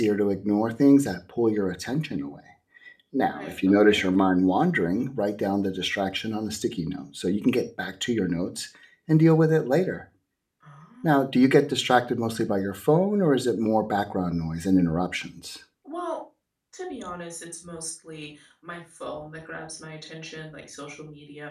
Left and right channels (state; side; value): identical; both; correlation 1.00